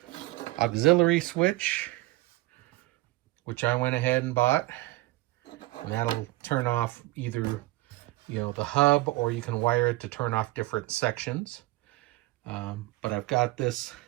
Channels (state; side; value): quieter; left; 19.4 dB